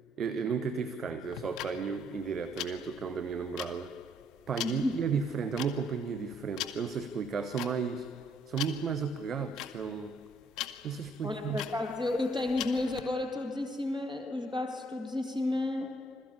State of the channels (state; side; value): normal; both; correlation 0.67